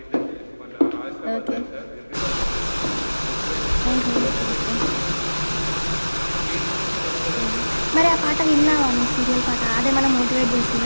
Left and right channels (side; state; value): both; inverted; correlation -1.00